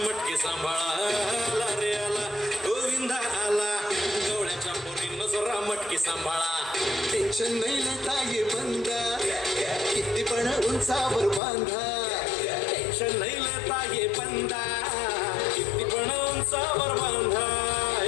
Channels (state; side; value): drops out; right; at 11.4 s